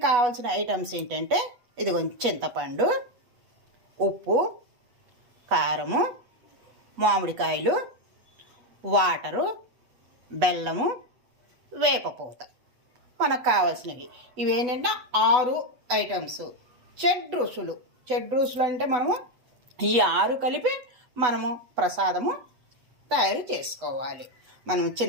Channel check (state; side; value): late; left; 8.1 ms